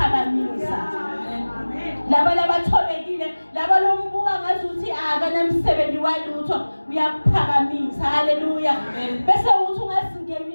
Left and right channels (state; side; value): inverted; both; correlation -1.00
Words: laba labathobekile laba lombuka ngazuthi akanamsebenzi walutho uyaphakamisa haleluya bese uthi